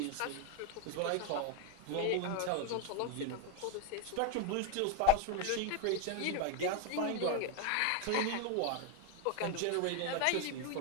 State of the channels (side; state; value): both; different; correlation 0.01